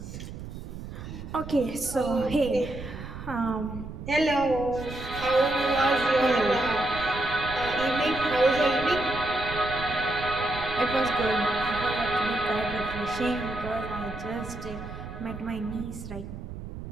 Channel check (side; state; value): right; noise; rumble, 10 dB below the sound